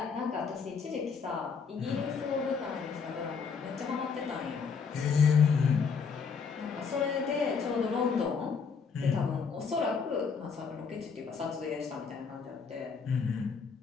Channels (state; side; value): quieter; right; 5.7 dB